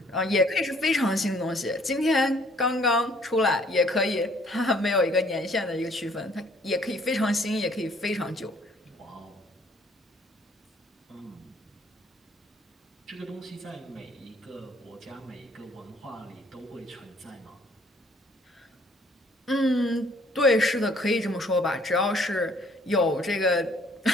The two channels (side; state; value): both; normal; correlation 0.61